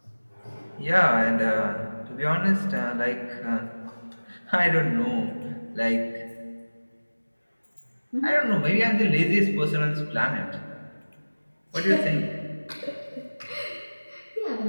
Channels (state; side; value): inverted; both; correlation -1.00